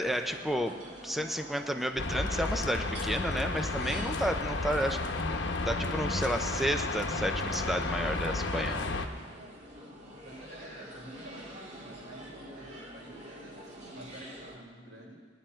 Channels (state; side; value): normal; both; correlation 0.64